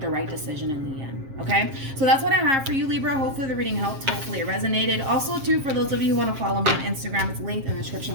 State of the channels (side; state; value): left; late; 7.5 ms